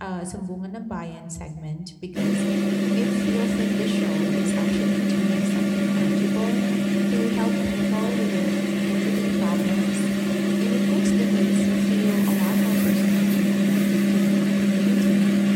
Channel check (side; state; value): both; identical; correlation 1.00